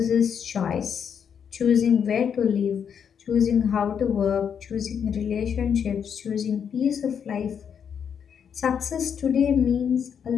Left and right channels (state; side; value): quieter; right; 7.6 dB